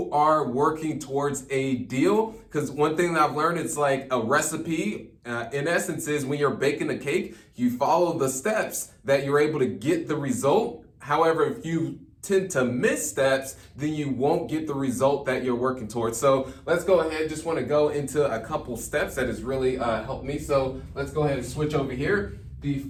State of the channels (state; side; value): identical; both; correlation 1.00